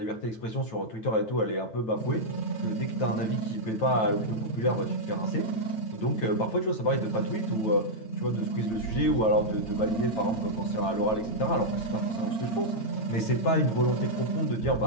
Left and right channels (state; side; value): late; right; 9.1 ms